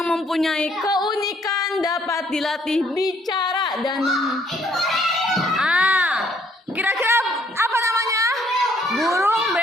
mempunyai keunikan dapat dilatih bicara dan kira-kira apa namanya? Burung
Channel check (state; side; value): normal; both; correlation 0.66